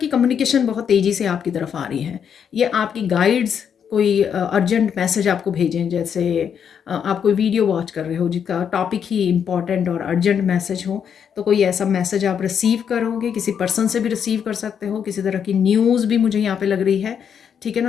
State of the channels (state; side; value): quieter; right; 7.8 dB